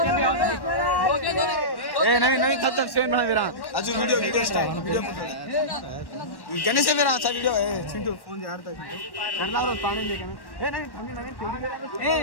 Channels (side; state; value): right; late; 1.1 ms